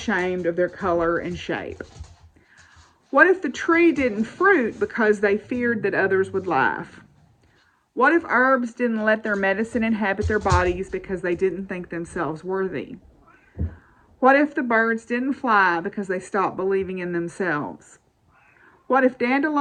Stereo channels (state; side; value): identical; both; correlation 1.00